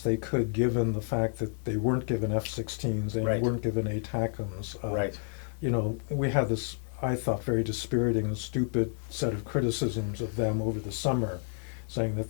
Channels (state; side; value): silent; right; 58 dB below the other